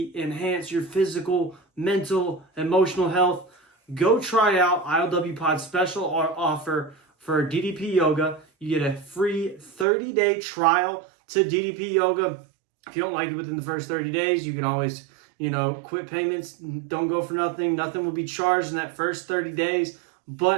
enhance your physical, mental, emotional health, go try out ILWPOD's special offer for DDPYoga. You get a free 30-day trial to DDPYoga. If you don't like it within the first 30 days, you can always quit payments. Don't go for nothing. Nothing will be charged in that first 30 days,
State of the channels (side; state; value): left; drops out; at 9.9 s